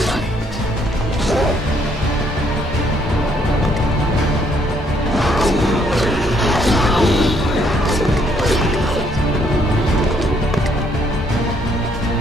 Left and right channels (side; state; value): both; normal; correlation 0.69